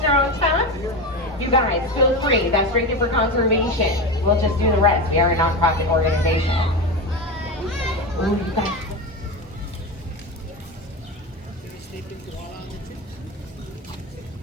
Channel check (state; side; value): normal; both; correlation 0.20